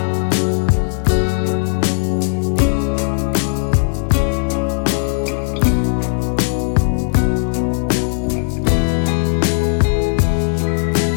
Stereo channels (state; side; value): silent; right; digital silence